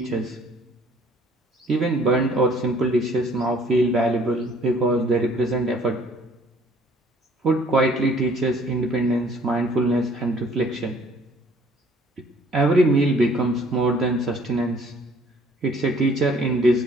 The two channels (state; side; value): normal; both; correlation 0.57